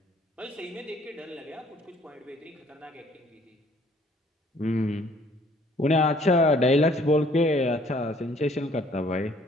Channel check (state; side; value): normal; both; correlation 0.60